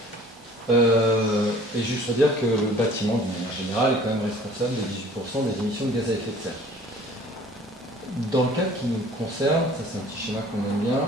Et juste pour dire que le bâtiment, d'une manière générale, est quand même responsable de 18% des émissions de gaz à effet de serre. Dans le cas qui nous concerne, ça c'est un petit schéma qu'on aime bien,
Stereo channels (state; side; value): normal; both; correlation 0.50